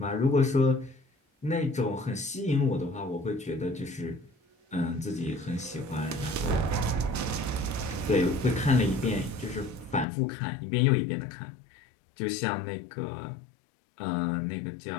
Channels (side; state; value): right; drops out; at 10.1 s